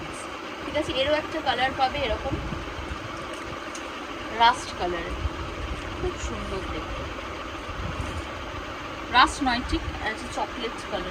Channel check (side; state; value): both; identical; correlation 1.00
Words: ঠিক আছে? এরও একটা কালার পাবে এরকম রাস্ট কালারের, খুব সুন্দর দেখতে, রাস্ট নয় ঠিক আছে, চকলেট